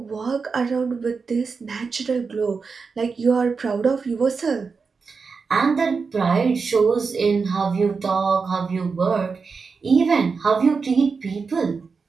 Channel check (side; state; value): left; quieter; 5.0 dB